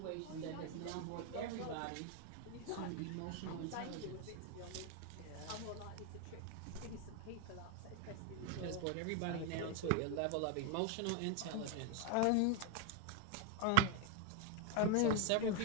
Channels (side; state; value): both; different; correlation 0.00